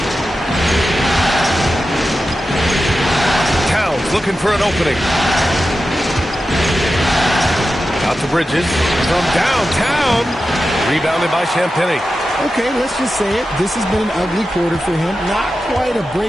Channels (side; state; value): both; normal; correlation 0.92